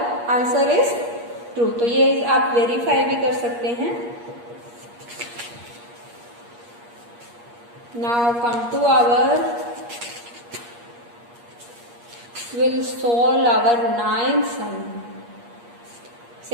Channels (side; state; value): left; late; 8.5 ms